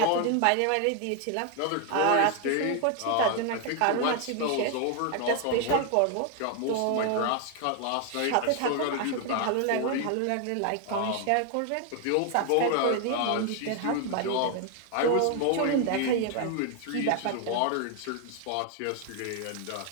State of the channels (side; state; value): both; different; correlation 0.01